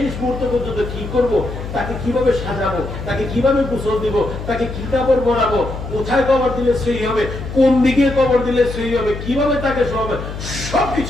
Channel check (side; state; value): left; noise; hum, 8 dB below the sound